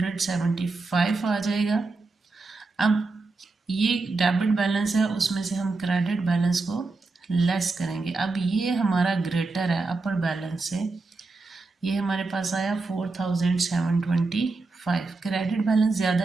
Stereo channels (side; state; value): left; quieter; 3.7 dB